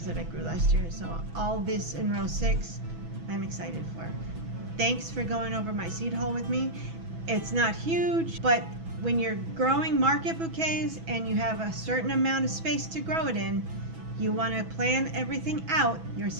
that I grew last year. So all this in row 6, I'm excited for. Thanks for going over my seed haul with me. It's not huge, but when you're growing market bouquets and you have a certain amount of space to grow it in, you want to plan everything out, your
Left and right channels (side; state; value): left; late; 6.1 ms